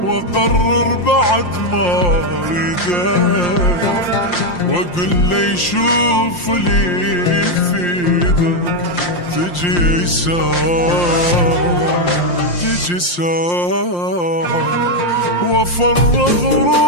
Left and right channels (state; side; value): late; right; 5.7 ms